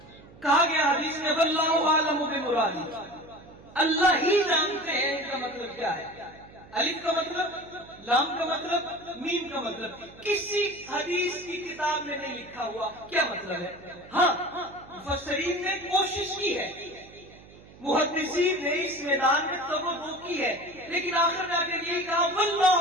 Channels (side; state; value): right; noise; hum, 22 dB below the sound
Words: کہا گیا حدیث میں واللہ اعلم بمرادہ، اللہ ہی جانتے ہیں ان کا مطلب کیا ہے۔ الف کا مطلب، لام کا مطلب، میم کا مطلب کسی حدیث کی کتاب میں نہیں لکھا ہوا کیا مطلب ہے۔ ہاں مفسرین نے کوشش کی ہے، محدثین نے اس میدان میں توبہ کی ہے، لیکن آخر میں آ کر یہ کہا